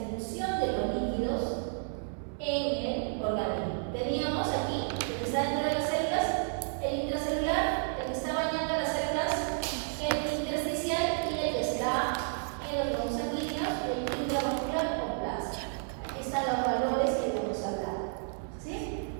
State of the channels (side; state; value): left; silent; 57 dB below the other